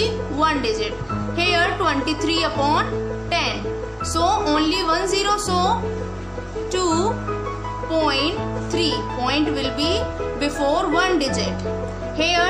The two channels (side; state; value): both; identical; correlation 1.00